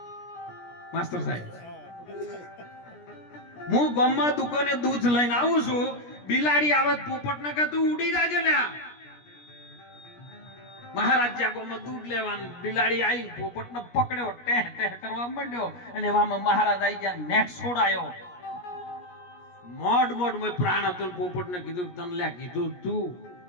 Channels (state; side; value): late; right; 17 ms